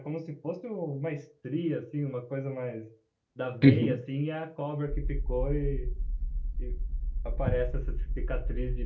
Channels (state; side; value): identical; both; correlation 1.00